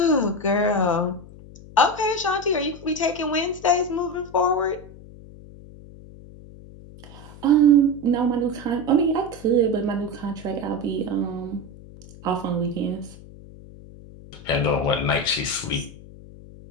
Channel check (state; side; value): noise; left; hum, 18 dB below the sound